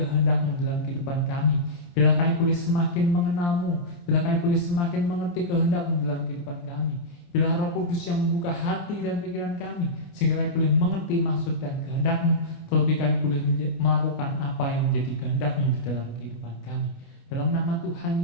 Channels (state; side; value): late; right; 29 ms